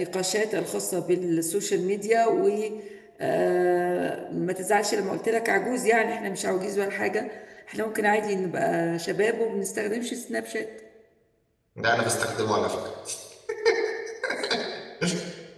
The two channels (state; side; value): identical; both; correlation 1.00